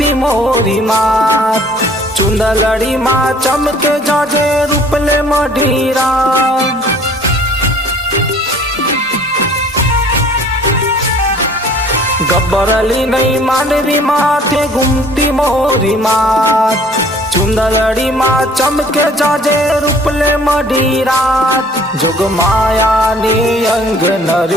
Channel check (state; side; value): normal; both; correlation 0.54